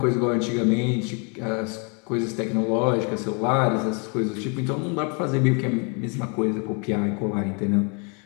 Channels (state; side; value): quieter; right; 35.4 dB